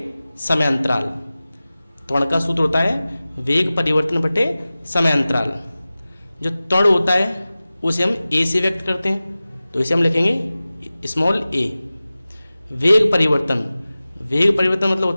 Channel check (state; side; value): inverted; both; correlation -0.97